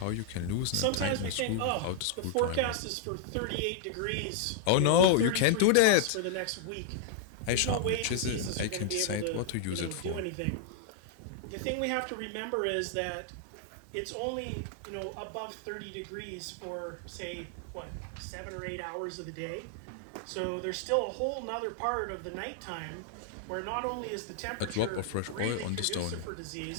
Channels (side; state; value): both; different; correlation -0.01